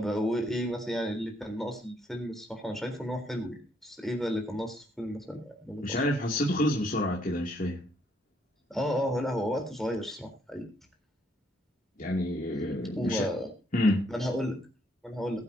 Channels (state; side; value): normal; both; correlation 0.71